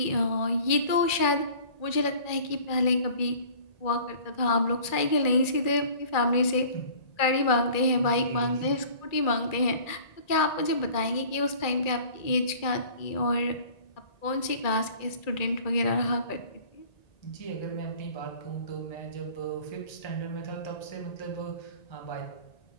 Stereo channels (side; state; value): right; late; 2.3 ms